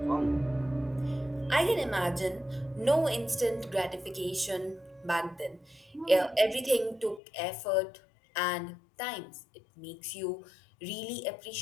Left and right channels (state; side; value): drops out; right; at 7.2 s